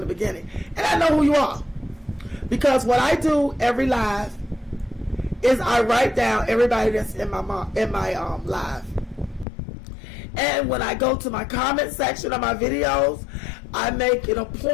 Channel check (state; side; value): drops out; right; at 9.5 s